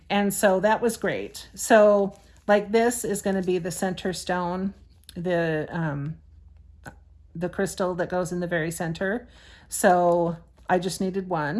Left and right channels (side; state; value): both; identical; correlation 1.00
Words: And so that was great. So like this is going to be the center stone, the crystal that goes in the very center. So I just needed